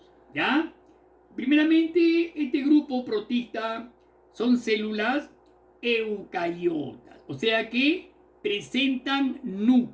¿ya? Primeramente, este grupo protista son células eucariotas, o sea que presentan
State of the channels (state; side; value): identical; both; correlation 1.00